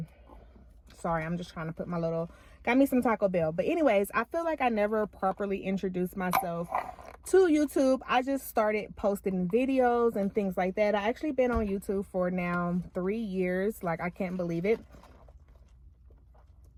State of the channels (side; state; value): both; identical; correlation 1.00